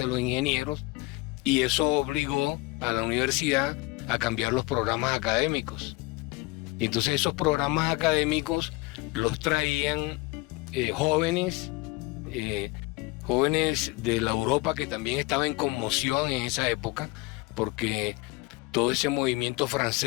de los ingenieros, y eso obligó a la universidad a cambiar los programas académicos. Y entonces esos programas académicos los traían jóvenes de la Europa, que también estaba en conmoción en esa época, porque todo ese movimiento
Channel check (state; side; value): quieter; right; 22.0 dB